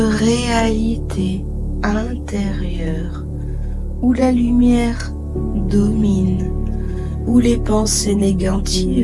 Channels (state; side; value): identical; both; correlation 1.00